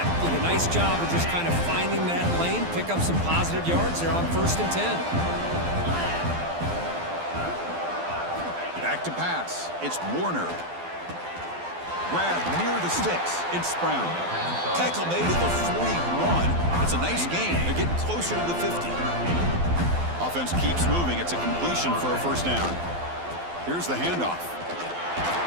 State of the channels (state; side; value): late; left; 12 ms